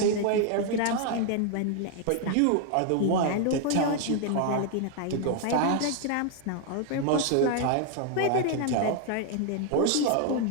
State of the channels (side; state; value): both; different; correlation 0.00